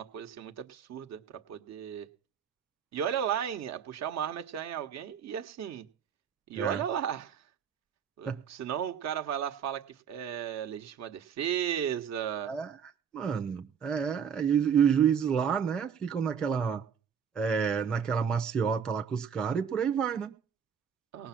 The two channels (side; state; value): left; quieter; 7.4 dB